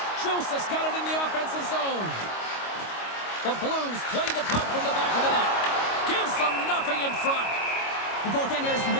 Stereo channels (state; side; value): late; right; 25 ms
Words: Joseph's got it in the offensive zone. The Blues play the puck from the back of the net. Gives them nothing in front. The goaltender is